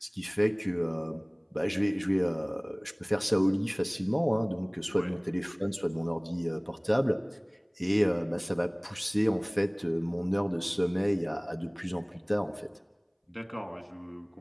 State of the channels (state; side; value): identical; both; correlation 1.00